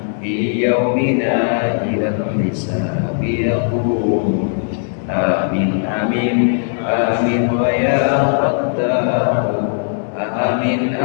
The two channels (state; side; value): silent; right; digital silence